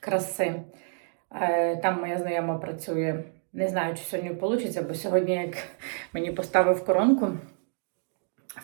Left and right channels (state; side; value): silent; left; 59 dB below the other